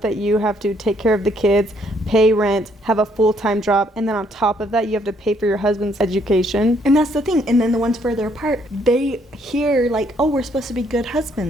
you have to take care of the kids, pay rent, have a full-time job, and then on top of that, you have to pay for your husband's education? And that's the thing. And then the ones further apart, they hear like, oh, we're supposed to be good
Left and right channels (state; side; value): normal; both; correlation 0.68